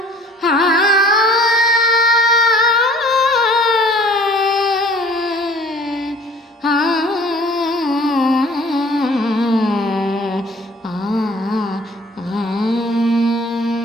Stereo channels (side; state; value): both; normal; correlation 0.52